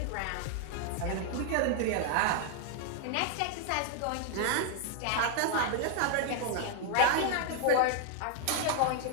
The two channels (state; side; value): different; both; correlation 0.00